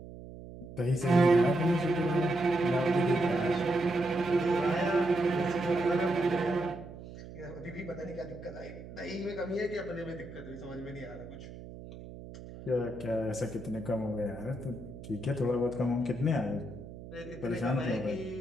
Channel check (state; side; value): noise; right; hum, 14 dB below the sound